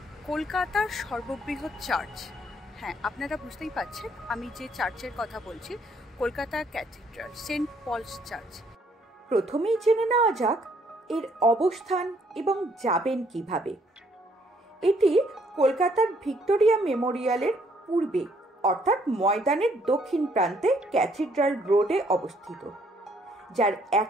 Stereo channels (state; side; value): normal; both; correlation 0.67